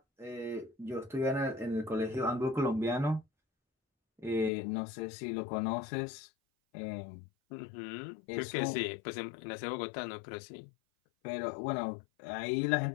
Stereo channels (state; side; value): drops out; right; at 4.5 s